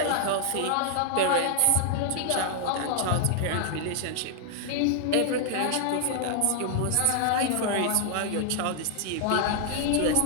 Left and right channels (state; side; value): different; both; correlation 0.00